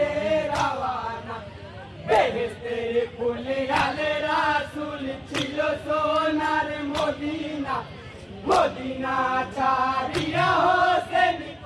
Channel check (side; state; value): both; identical; correlation 1.00